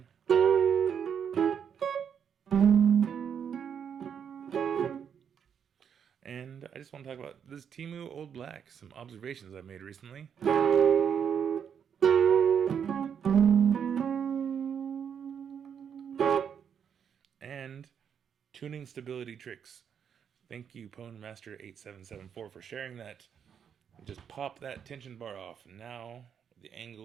And I just want to talk about this Temu Old Black, some observations I made recently. And tuning stability tricks. Thank you, PwnMaster8774, for sharing that. Just pop that tension bar off. Now the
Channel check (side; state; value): left; quieter; 7.8 dB